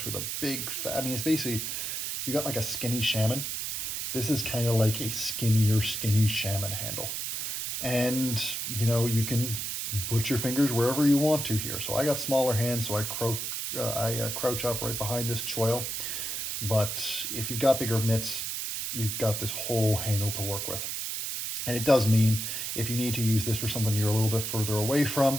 with a big I mean, it's basically, if you got like a skinny shaman, this is kind of like a skinny shaman handle. And, you know, you can put your fingers wherever you want to here. So I got smaller hands, so I crouch up right behind this choil. But if you've got bigger mitts, you've got this whole handle to work with. And it does mean if you need to use this for something you're a little bit further away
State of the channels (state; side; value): noise; right; hiss, 3 dB below the sound